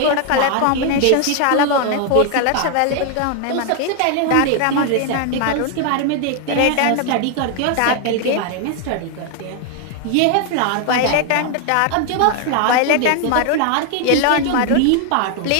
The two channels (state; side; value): different; both; correlation 0.00